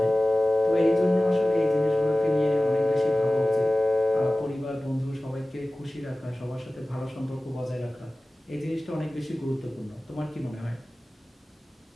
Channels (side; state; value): both; normal; correlation 0.97